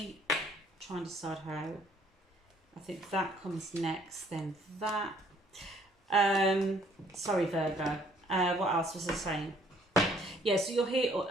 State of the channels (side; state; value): both; normal; correlation 0.62